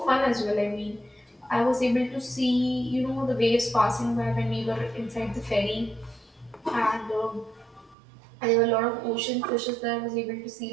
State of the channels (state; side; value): drops out; left; at 8.0 s